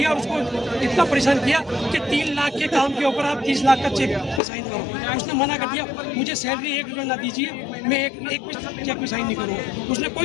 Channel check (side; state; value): right; drops out; at 4.4 s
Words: और उसको इतना परेशान किया कि 3 लाख के काम के ऊपर आप 30 लाख का चेक साइन करो। उसने मना कर दिया, मुझे सैलरी 1 रुपया ना दीजिए, मैं एक चेक में साइन नहीं करूँगा। उसने